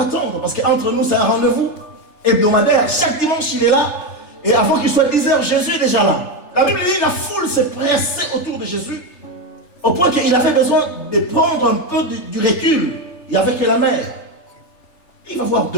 parce qu'entre nous, c'est un rendez-vous hebdomadaire. Chaque dimanche, il est là, et avant qu'il soit 10 heures, Jésus est déjà là. La Bible dit, la foule s'est pressée autour de Jésus, au point qu'il avait besoin de prendre un peu du recul. Il n'y avait que la mer. Il va voir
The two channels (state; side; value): late; right; 3.3 ms